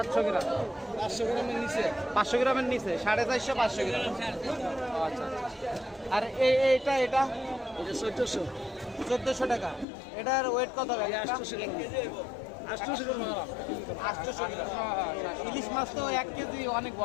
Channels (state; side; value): drops out; right; at 9.9 s